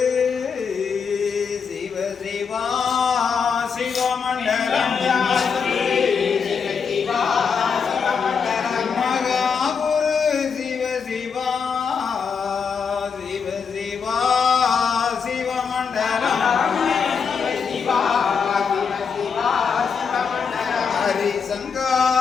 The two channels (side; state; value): right; quieter; 6.1 dB